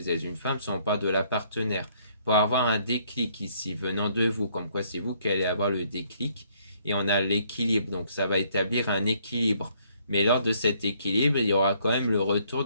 êtes une femme, soit on parle de la partenaire. Pour avoir un déclic ici venant de vous, comme quoi c'est vous qui allez avoir le déclic. Et on a l'équilibre, donc ça va établir un équilibre. Mais lors de cet équilibre, il y aura quand même le retour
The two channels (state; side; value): inverted; both; correlation -0.66